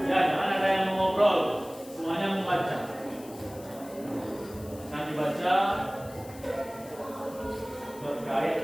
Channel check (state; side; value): noise; left; hiss, 20 dB below the sound